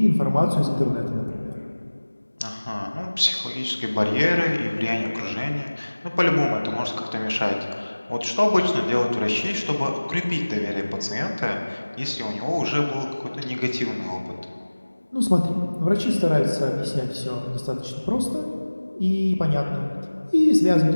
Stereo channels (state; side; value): inverted; both; correlation -1.00